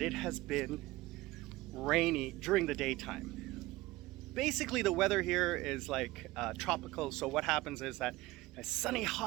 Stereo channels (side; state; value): left; quieter; 19.1 dB